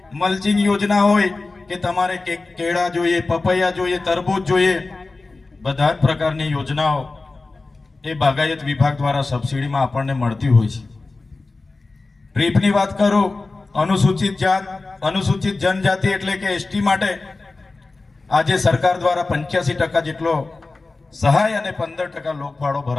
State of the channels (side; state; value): right; quieter; 3.5 dB